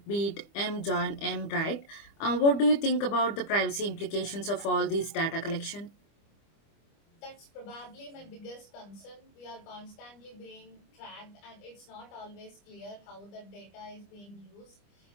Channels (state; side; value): late; right; 25 ms